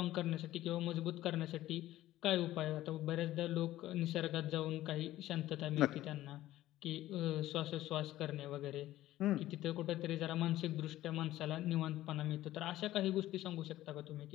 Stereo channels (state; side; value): quieter; right; 14.9 dB